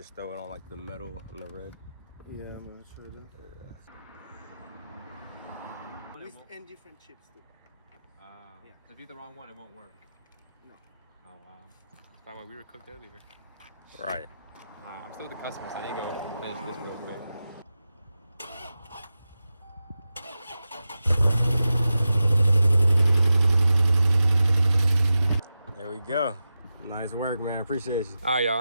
throw it on like the metal and the red. Yeah, I'm not sure that. And different chips too. Yeah. If you hit the wrong one, it won't work. No. Oh, wow. That's why we were cooked earlier. Right. I'm still with the customer, so I need to go finish this real quick. There we go. Nice work, man. Appreciate you. All right,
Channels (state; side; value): inverted; both; correlation -0.92